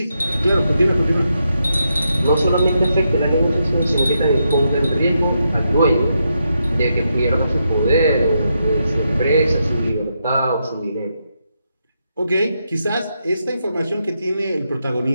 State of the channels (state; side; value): inverted; both; correlation -0.82